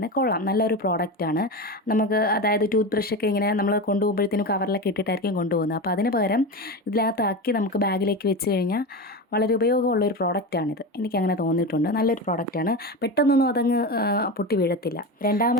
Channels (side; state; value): both; normal; correlation 0.22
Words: കൊള്ളാം, നല്ലൊരു പ്രോഡക്റ്റാണ്. നമുക്ക് അതായത് ടൂത്ത് ബ്രഷൊക്കെ ഇങ്ങനെ നമ്മൾ കൊണ്ടുപോകുമ്പോഴത്തേനും കവറിലൊക്കെ ഇട്ടിട്ടായിരിക്കും കൊണ്ടുപോകുന്നത്. അപ്പോൾ അതിന് പകരം ഇതിനകത്താക്കി നമുക്ക് ബാഗിലേക്ക് വെച്ച് കഴിഞ്ഞാൽ വളരെ ഉപയോഗമുള്ളൊരു പ്രോഡക്റ്റാണിത്. എനിക്കങ്ങനെ തോന്നിയിട്ടുണ്ട്. നല്ലൊരു പ്രോഡക്റ്റാണ്, പെട്ടെന്നൊന്നും അതങ്ങ് പൊട്ടി വീഴത്തില്ല.